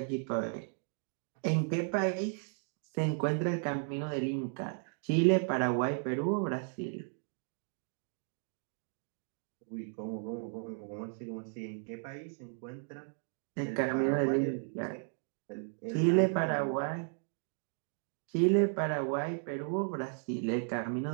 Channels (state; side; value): silent; left; 55 dB below the other